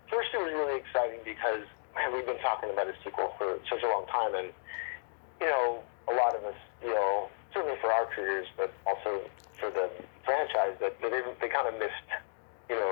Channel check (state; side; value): silent; right; digital silence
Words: first it was really exciting because, man, we've been talking about a sequel for such a long time, and, a lot of us feel, certainly for our careers, but also for the franchise, that they kind of missed,